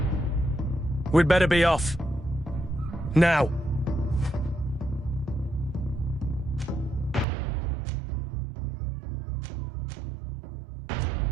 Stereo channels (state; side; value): drops out; left; at 7.2 s